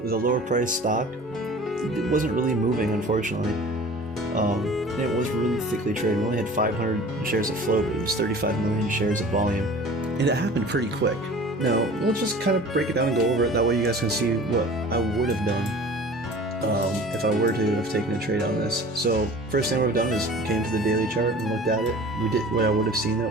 with a lower price stock, it wasn't really moving, unfortunately. And it was really thickly traded. We only had 500 shares of float, but it was 35 million shares of volume, and it happened pretty quick. Now, let's just kind of break it down and go over it. That way you guys can see what I would have done if I were to have taken a trade on this. So first thing I would have done is came to the daily chart and looked at it. We did what I would have seen, that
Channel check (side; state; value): both; normal; correlation 0.43